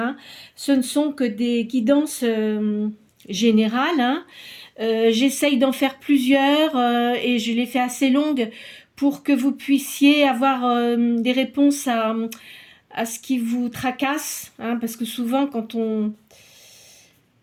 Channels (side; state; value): both; identical; correlation 1.00